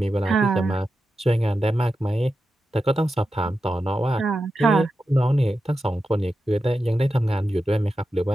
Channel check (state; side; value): normal; both; correlation 0.90